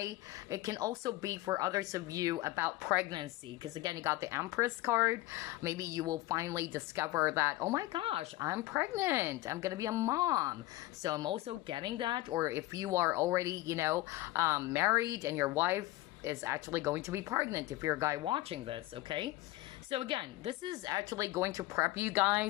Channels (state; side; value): quieter; right; 18.0 dB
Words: It can also be for others of you about pregnancy, because again, you got the Empress card. Maybe you will finally discover that, oh my gosh, I'm pregnant. I'm going to be a mom. So I'm also getting that. Or if you are already, you know, married and your wife is actually going to be pregnant, if you're a guy watching this, okay? So again, this is actually going to prep you